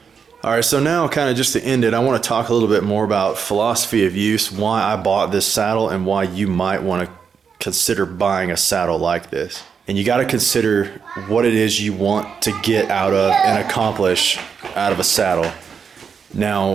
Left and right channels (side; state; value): left; quieter; 6.4 dB